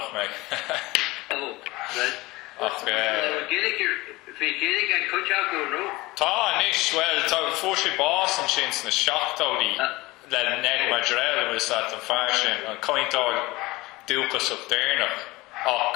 me. Oh, right. Ach, Gaeilge and coach out go no. Tá níos well, tá fóisi bás an sin na seachtáí le neg Mháire was that an fearsin an cointáil dúchas of déirnach ach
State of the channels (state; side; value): quieter; right; 20.9 dB